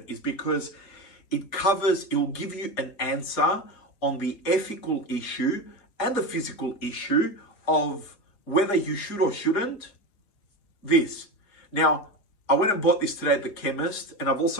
is because it will give you an answer on the ethical issue and the physical issue of whether you should or shouldn't this. Now, I went and bought this today at the chemist, and I've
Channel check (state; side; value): late; right; 4.9 ms